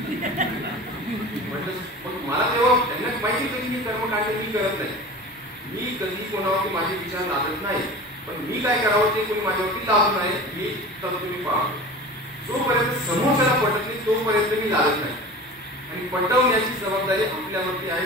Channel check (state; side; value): normal; both; correlation 0.36